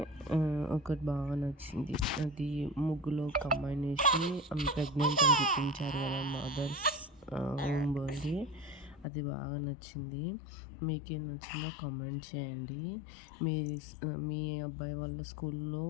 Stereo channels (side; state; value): right; drops out; at 9.1 s